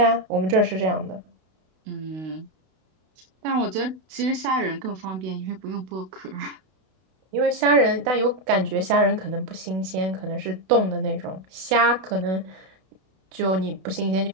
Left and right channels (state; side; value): late; left; 32 ms